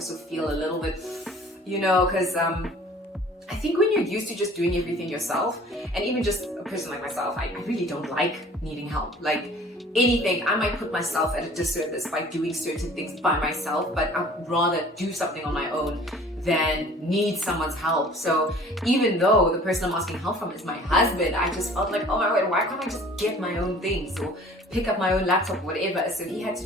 feel a little bit, because I think when you're used to just doing everything yourself, and even just a person like myself, I really don't like needing help. Like anything, I might put myself at a disservice by doing certain things by myself, but I'd rather do something on my own than need someone's help. So even though the person I'm asking help from is my husband, I just felt like, oh my God, why can't I just get my own things or pick up my own laptop, whatever. So he had to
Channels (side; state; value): both; normal; correlation 0.49